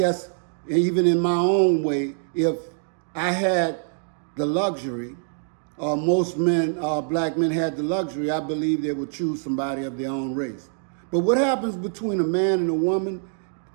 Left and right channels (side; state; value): left; silent; digital silence